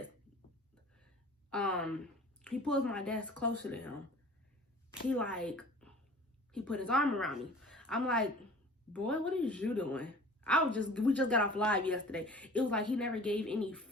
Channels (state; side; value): normal; both; correlation 0.45